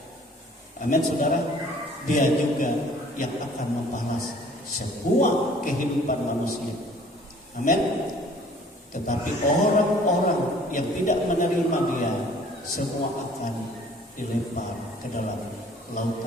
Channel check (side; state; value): both; normal; correlation 0.53